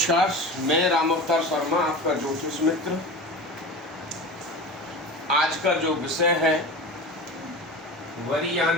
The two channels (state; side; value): normal; both; correlation 0.32